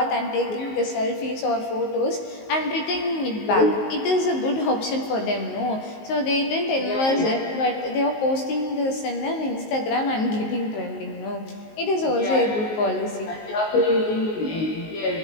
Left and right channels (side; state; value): right; late; 19 ms